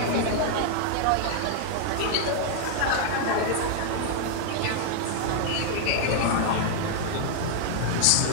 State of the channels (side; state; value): both; different; correlation 0.00